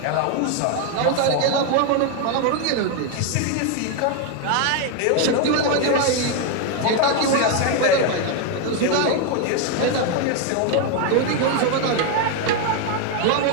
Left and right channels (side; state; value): both; different; correlation 0.01